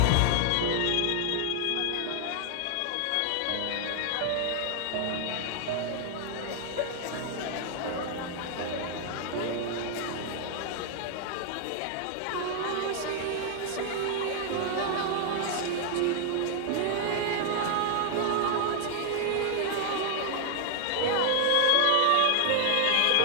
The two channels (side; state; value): both; different; correlation 0.00